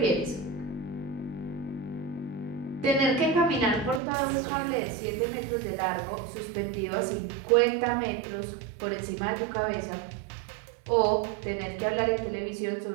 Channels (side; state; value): left; drops out; at 4.0 s